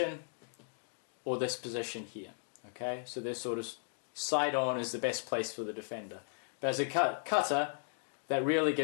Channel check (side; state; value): right; silent; digital silence